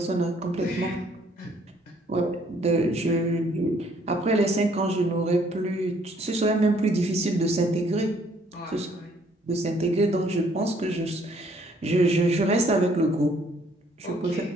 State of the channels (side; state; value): both; normal; correlation 0.63